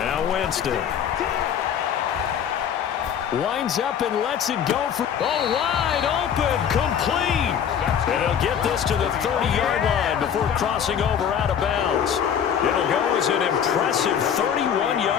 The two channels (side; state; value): right; quieter; 8.4 dB